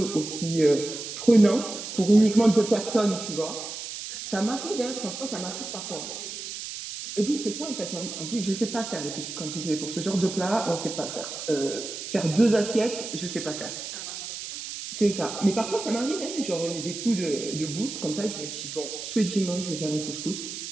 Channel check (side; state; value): right; noise; hiss, 8 dB below the sound